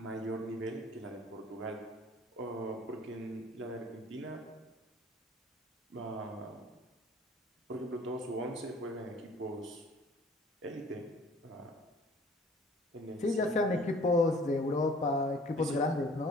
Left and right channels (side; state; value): both; normal; correlation 0.52